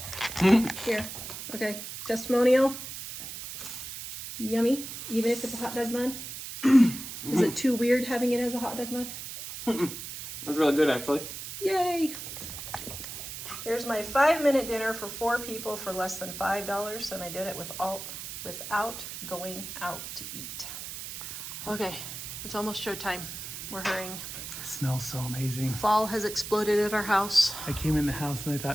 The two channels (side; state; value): right; noise; hiss, 9 dB below the sound